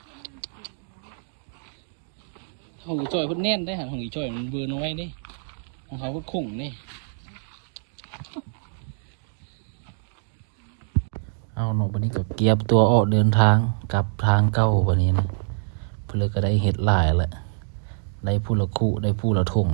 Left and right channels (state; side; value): silent; left; digital silence